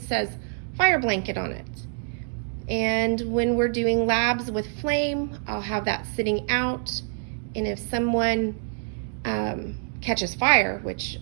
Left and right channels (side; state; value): left; silent; 58 dB below the other